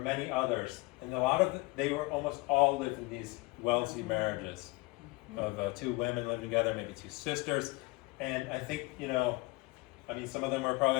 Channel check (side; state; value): right; quieter; 24.8 dB